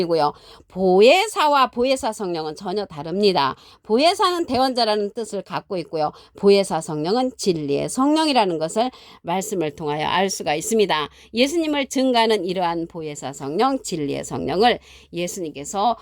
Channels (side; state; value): both; identical; correlation 1.00